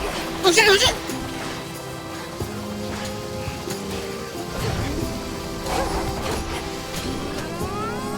Oh shit, oh shit!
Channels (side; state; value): both; identical; correlation 1.00